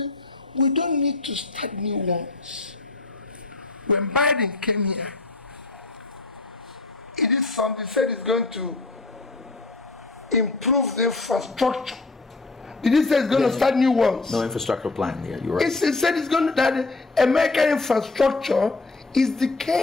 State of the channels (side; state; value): right; quieter; 3.4 dB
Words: we don't need to start new ones. When Biden came here, it is something said it's going to improve the infrastructure. Did he say it's going to start new ones? No infrastructure plan. Yeah, you're right. It said it's going to, that American infrastructure is